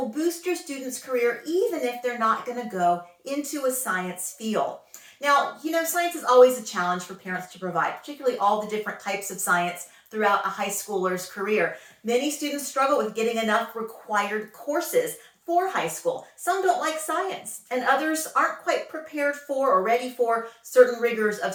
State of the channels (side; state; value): both; identical; correlation 1.00